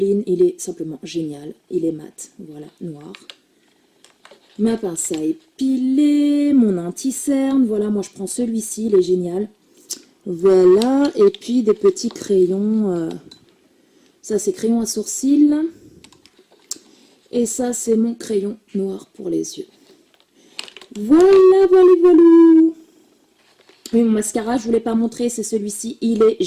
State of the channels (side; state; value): both; identical; correlation 1.00